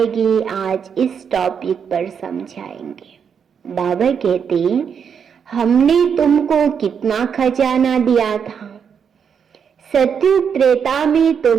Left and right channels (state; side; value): quieter; left; 7.1 dB